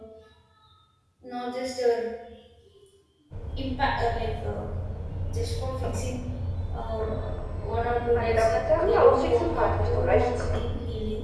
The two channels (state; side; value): identical; both; correlation 1.00